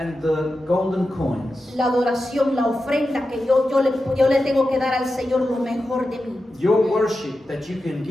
the golden coins, la adoración, la ofrenda que yo le tengo que dar al Señor lo mejor de mí. your worship that you can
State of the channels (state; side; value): normal; both; correlation 0.91